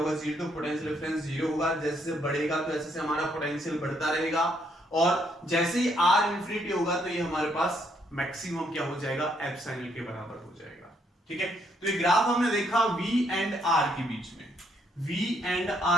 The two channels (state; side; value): normal; both; correlation 0.72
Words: 0, तो पोटेंशियल डिफरेंस 0 होगा, जैसे बढ़ेगा तो ऐसे से हमारा पोटेंशियल बढ़ता रहेगा, और जैसे ही r इंफिनिटी होगा तो ये हमारे पास मैक्सिमम क्या हो जाएगा, एप्सिलॉन के बराबर हो जाएगा, ठीक है। तो ये ग्राफ हमने देखा v एंड r के बीच में, v एंड